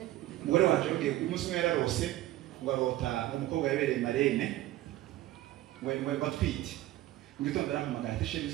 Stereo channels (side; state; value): left; quieter; 15.4 dB